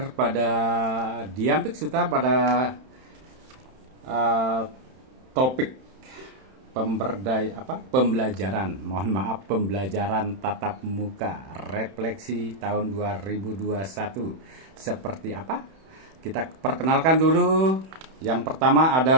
pada Diampik Suta pada topik pembelajaran tatap muka refleksi tahun 2021 seperti apa? Kita perkenalkan dulu. Yang pertama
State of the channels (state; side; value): late; left; 31 ms